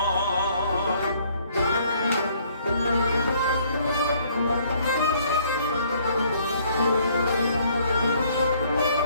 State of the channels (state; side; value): inverted; both; correlation -0.62